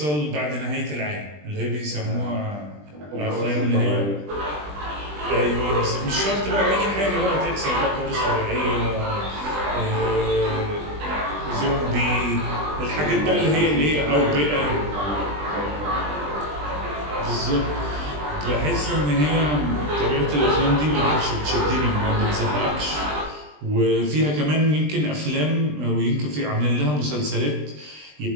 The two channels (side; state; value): left; late; 20 ms